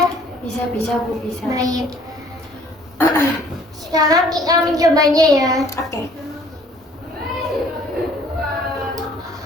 Bisa Bu, bisa. Baik. Sekarang kita mencobanya ya. Oke.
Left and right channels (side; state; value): both; normal; correlation 0.57